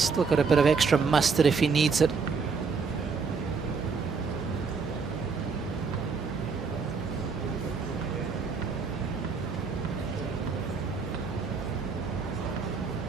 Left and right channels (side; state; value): left; quieter; 5.1 dB